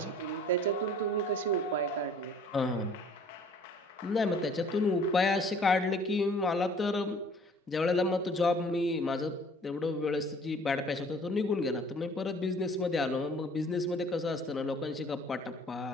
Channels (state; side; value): normal; both; correlation 0.53